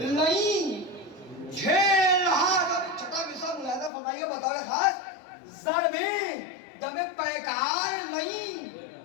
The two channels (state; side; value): drops out; right; at 3.9 s